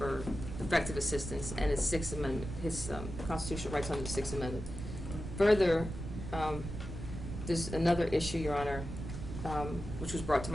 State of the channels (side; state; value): right; noise; rumble, 7 dB below the sound